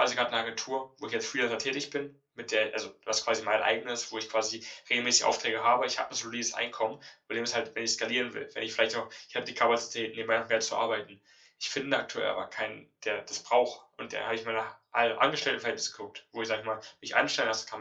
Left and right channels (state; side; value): identical; both; correlation 1.00